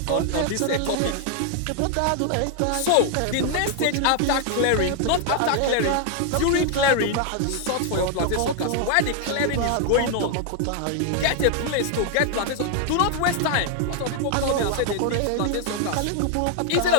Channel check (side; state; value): both; different; correlation 0.00